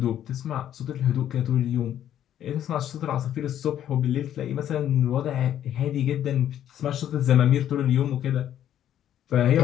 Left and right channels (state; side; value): quieter; right; 10.9 dB